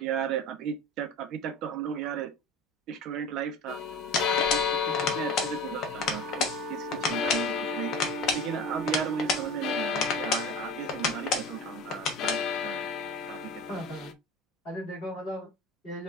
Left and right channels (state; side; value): normal; both; correlation 0.34